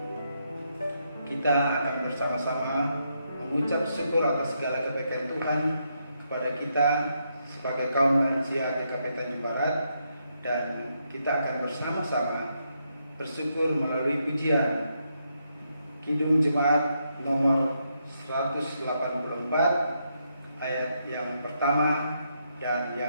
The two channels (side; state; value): both; inverted; correlation -0.79